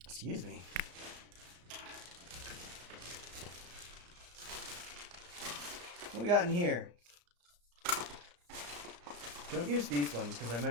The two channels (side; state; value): left; late; 34 ms